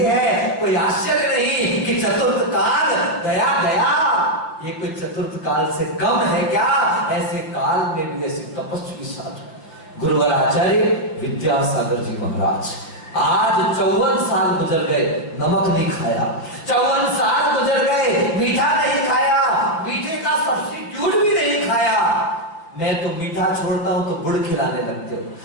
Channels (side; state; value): right; late; 6.0 ms